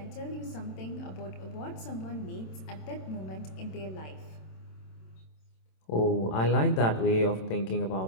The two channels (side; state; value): right; late; 27 ms